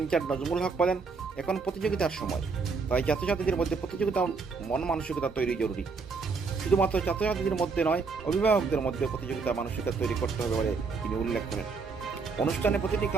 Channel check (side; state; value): left; quieter; 4.7 dB